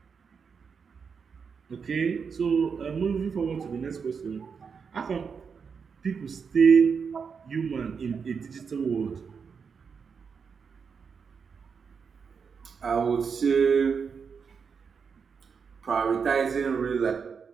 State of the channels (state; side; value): quieter; left; 6.0 dB